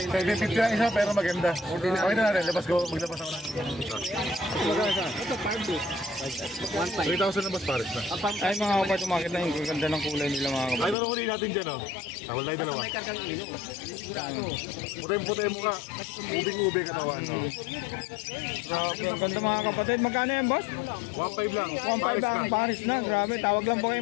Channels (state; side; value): drops out; right; at 11.0 s